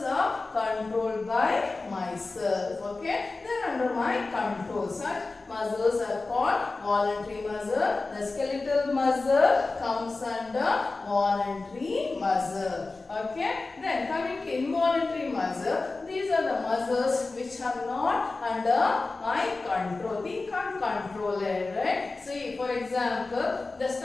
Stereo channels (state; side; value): quieter; right; 3.6 dB